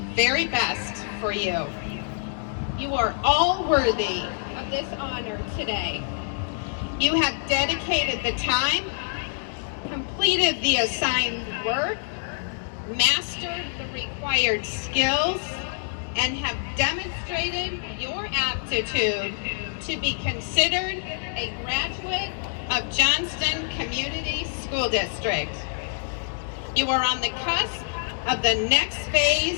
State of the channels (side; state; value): right; silent; digital silence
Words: very best for you. You are all worthy of this honor today. You have dedicated the time, completed the assigned work, mastered the required skills, and have demonstrated your aptitude to be considered a graduate of Johnston Community School District. You are on the cusp of the next